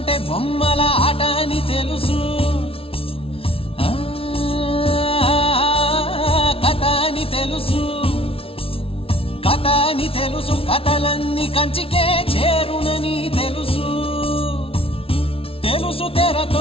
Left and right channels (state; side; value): late; right; 0.26 ms